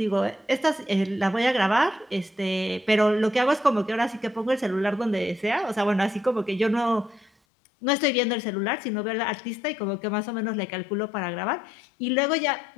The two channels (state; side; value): drops out; right; at 7.3 s